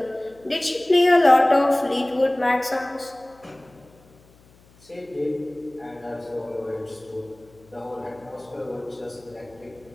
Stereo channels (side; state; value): left; noise; hum, 28 dB below the sound